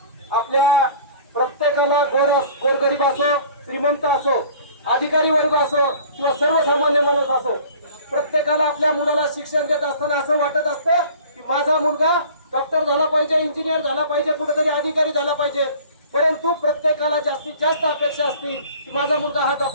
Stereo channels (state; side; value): inverted; both; correlation -0.48